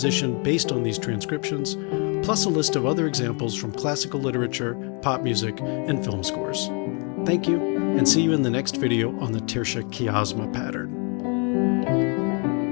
based on these transcriptions, plus a list of other examples from classical literature, pop music, and film scores. Thank you, and see you in the next video on the Tertia Quiescenza pattern.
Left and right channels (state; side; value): quieter; right; 35.5 dB